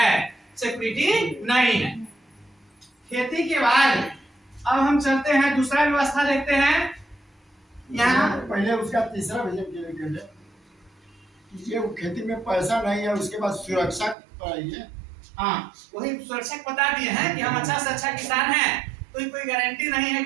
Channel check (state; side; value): drops out; left; at 14.2 s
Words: सिक्योरिटी नहीं है। खेती के बाद अब हम चलते हैं दूसरा व्यवस्था देखते हैं। यहाँ पहले उसका तीसरा विजन ये खेती में पैसा नहीं है, उसके बाद सुरक्षा है। हाँ, वही सुरक्षा बता दिए हैं कि हम अच्छा से अच्छा किसान हैं, कोई गारंटी नहीं है